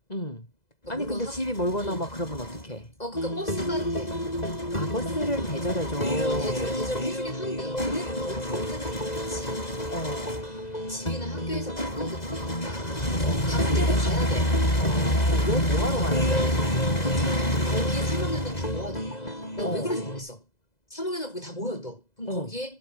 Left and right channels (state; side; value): late; right; 2.0 ms